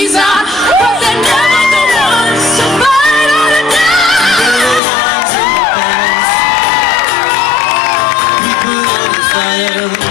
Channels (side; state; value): right; drops out; at 4.8 s